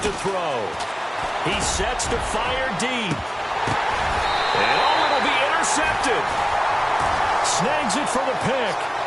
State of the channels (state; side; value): identical; both; correlation 1.00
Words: to throw. He sets to fire deep. And oh, it'll be intercepted. Snags it for the pick.